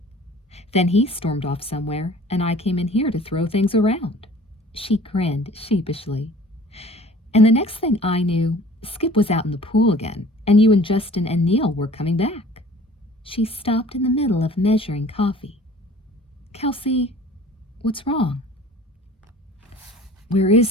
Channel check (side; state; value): both; normal; correlation 0.48